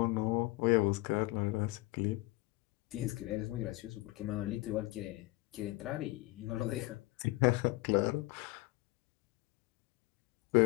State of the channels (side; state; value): right; quieter; 21.1 dB